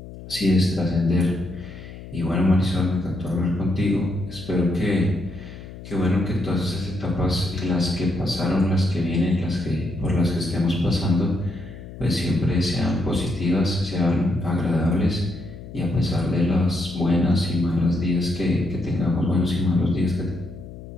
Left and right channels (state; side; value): noise; left; hum, 14 dB below the sound